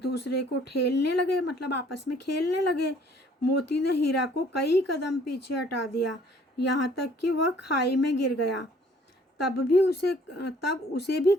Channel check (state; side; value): normal; both; correlation 0.58